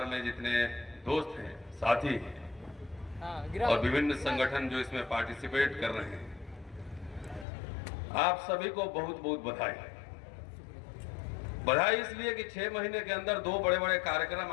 में जितने दोस्त हैं, साथी हैं और विभिन्न संगठन जो इसमें पार्टिसिपेट कर रहे हैं, आप सभी को बहुत बहुत बधाई। बधाई इसलिए कि 6 महीने के अंदर 2 बड़े बड़े कार्यक्रम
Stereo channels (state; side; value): drops out; right; at 7.5 s